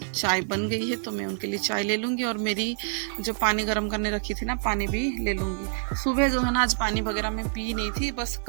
चाय बन गई है, तो मैं उनके लिए चाय ले लूँगी और मेरी जो पानी गर्म करने रखी थी ना पानी भी ले लूँगी। सुबह जो है ना आज पानी वगैरह मैं पी नहीं थी, बस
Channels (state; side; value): silent; left; digital silence